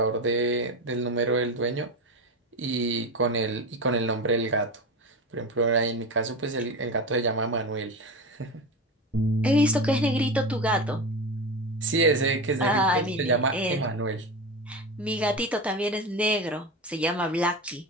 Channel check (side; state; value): both; normal; correlation 0.23